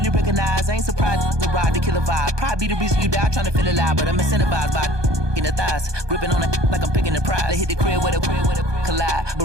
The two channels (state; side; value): late; left; 1.2 ms